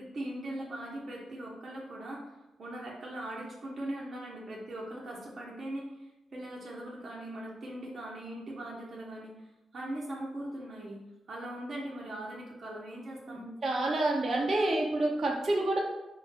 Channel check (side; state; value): both; normal; correlation 0.89